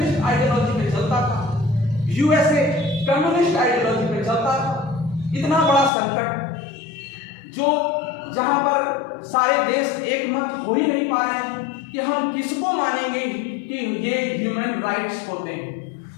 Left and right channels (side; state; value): right; drops out; at 5.9 s